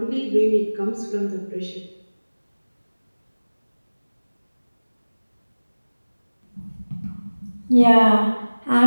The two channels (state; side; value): inverted; both; correlation -1.00